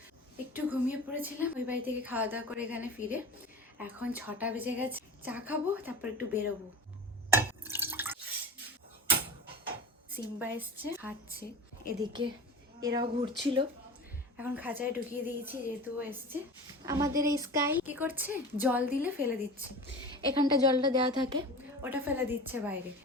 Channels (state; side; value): normal; both; correlation 0.33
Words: একটু ঘুমিয়ে পড়েছিলাম ওই বাড়ি থেকে খাওয়া দাওয়া করে এখানে ফিরে। এখন 6টা বেজে গেছে, চা খাবো, তারপর একটু বেরোবো। সিম্বা এসছে, খাচ্ছে। এদিকে এরাও ঘুরছিল, এখন খাঁচায় ঢুকিয়ে দিয়েছি যেহেতু এসছে। আমাদের এই স্কাই কি করছে, জল দিলে ফেলে দিচ্ছে। এখানটা জলটা দেওয়া থাকে, ওটা ফেলে দিচ্ছে বাইরে।